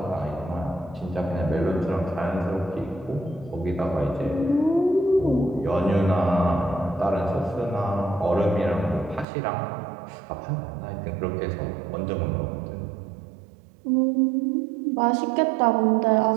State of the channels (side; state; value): left; drops out; at 9.2 s